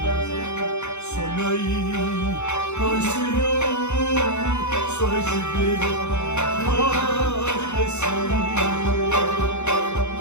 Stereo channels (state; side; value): late; right; 0.82 ms